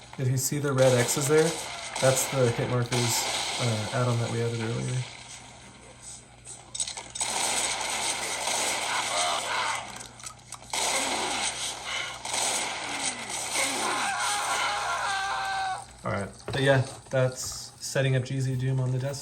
If you see the red X's there, that's the hit markers add-on that we added earlier. Alright, but yeah, that's setting up GZDoom on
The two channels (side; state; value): both; identical; correlation 1.00